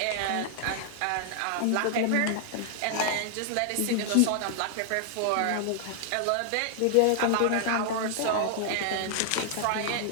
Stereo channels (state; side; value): different; both; correlation 0.00